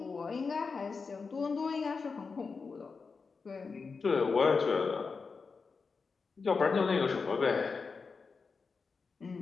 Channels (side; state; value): right; quieter; 4.8 dB